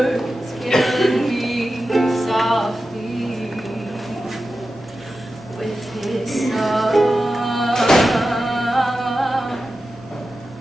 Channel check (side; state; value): both; normal; correlation 0.92